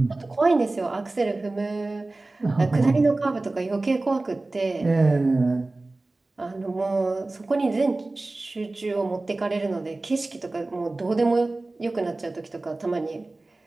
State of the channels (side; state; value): left; quieter; 3.1 dB